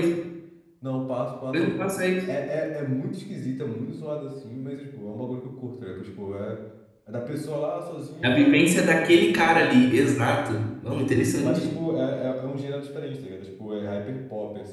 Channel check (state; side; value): identical; both; correlation 1.00